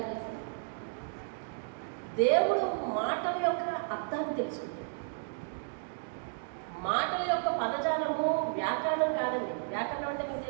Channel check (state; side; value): silent; left; digital silence